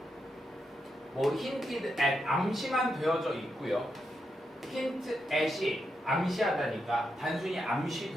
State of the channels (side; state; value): both; normal; correlation 0.84